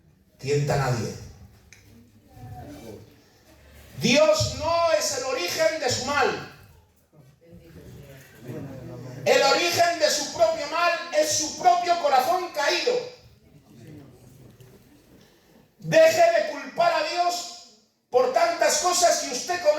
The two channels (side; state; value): both; identical; correlation 1.00